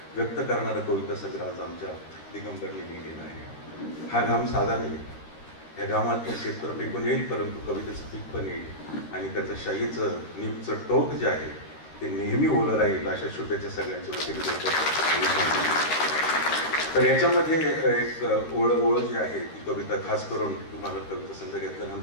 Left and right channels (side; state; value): right; late; 13 ms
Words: व्यक्त करणारं कविता सगळं आज आमच्या दिगंबरने लिहिलेलं आहे. हा घाम साधा नाही, या घामात शेतकरी पिकून येईल, परंतु कवितेचं पीक पण येईल आणि त्याचं शाईचं निपचं टोक जे आहे ते नेहमी ओलं राहील अशा शुभेच्छा सगळ्यांच्या वतीने देतो. तर याच्यामध्ये एक ओळ जी आहे ती कविता खास करून तुम्हाला कविता संघ